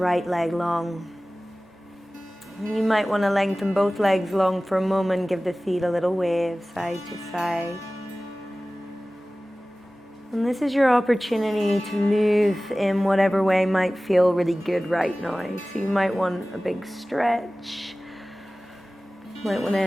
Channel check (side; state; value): both; normal; correlation 0.97